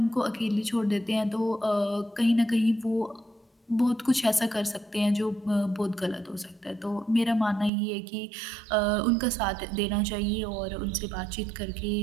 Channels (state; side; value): drops out; left; at 7.7 s